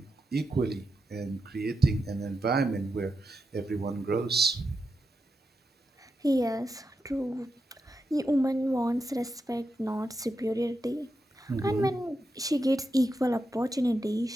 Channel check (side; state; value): both; normal; correlation 0.87